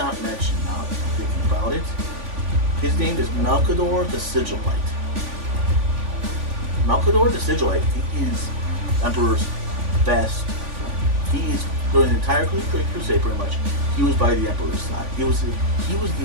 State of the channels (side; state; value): left; late; 3.5 ms